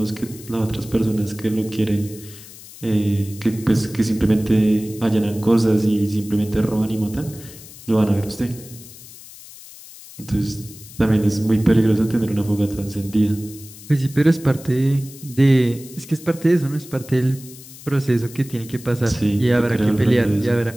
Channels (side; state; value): left; noise; hiss, 18 dB below the sound